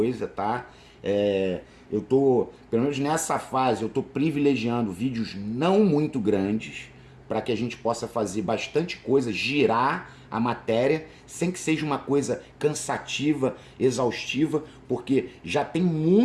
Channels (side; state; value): both; identical; correlation 1.00